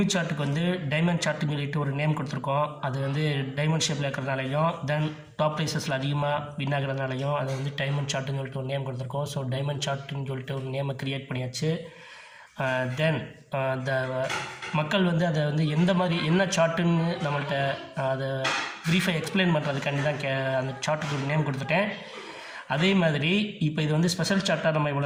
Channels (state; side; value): identical; both; correlation 1.00